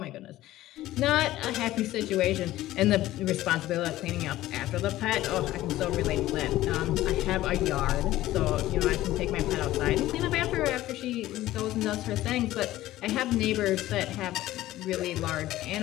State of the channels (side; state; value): right; quieter; 15.4 dB